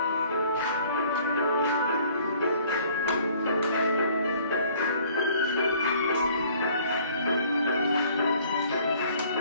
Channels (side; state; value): both; inverted; correlation -0.56